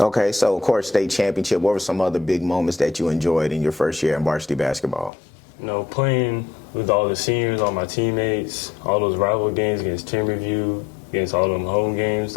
Okay, so, of course, state championship. What were some other big moments that you enjoyed in your first year in varsity basketball? You know, playing with all the seniors, all my teammates, all those rival games against team review, against all them home games,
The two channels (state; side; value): drops out; right; at 5.1 s